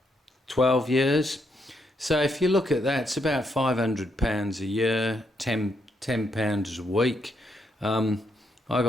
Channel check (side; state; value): both; normal; correlation 0.78